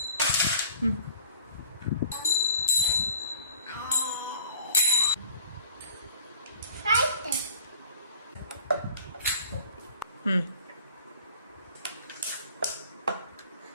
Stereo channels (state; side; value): inverted; both; correlation -0.49